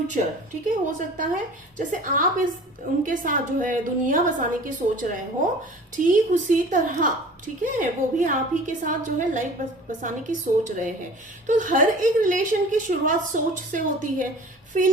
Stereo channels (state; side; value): normal; both; correlation 0.43